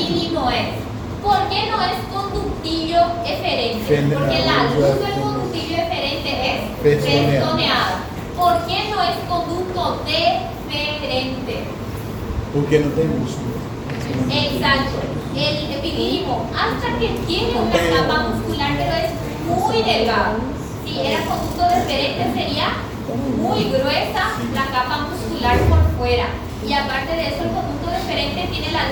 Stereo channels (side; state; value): both; identical; correlation 1.00